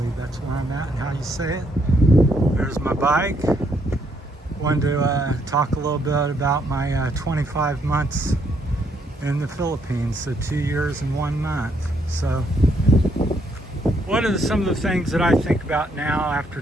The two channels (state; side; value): normal; both; correlation 0.72